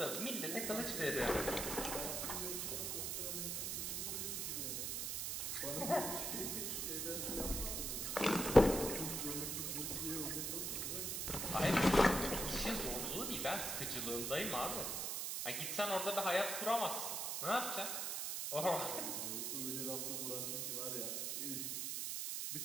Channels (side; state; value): right; noise; hiss, 1 dB below the sound